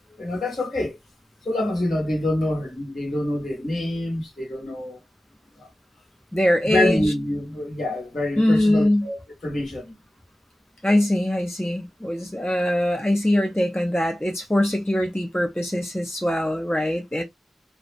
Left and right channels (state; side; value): normal; both; correlation 0.94